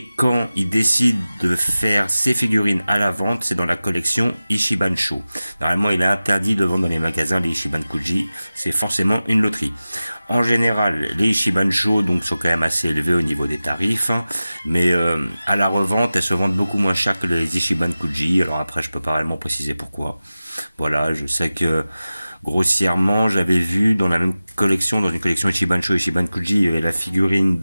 quand il décide de faire ses figurines à la vente, c'est dans la collection Ichiban-sho. Normalement, il est interdit de vendre dans les magasins les Ichiban Kuji. C'est forcément une loterie. En général, les Ichiban-sho donc sont quand même assez élevés au niveau des tarifs, hein, mais à la revente, elles se vendent beaucoup moins cher que les Ichiban Kuji. Alors après, je peux pas réellement préciser pourquoi. Voilà, je sais que grossièrement, j'avais vu dans la même collection, dans une collection Ichiban-sho et Ichiban Kuji, il y avait la figurine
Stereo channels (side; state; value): both; inverted; correlation -0.96